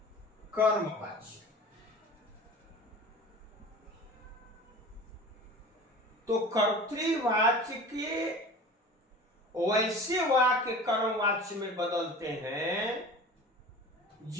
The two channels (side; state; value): both; normal; correlation 0.38